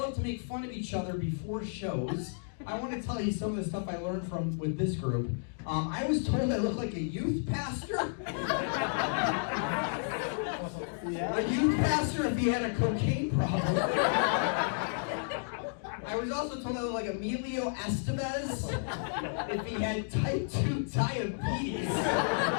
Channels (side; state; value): right; silent; digital silence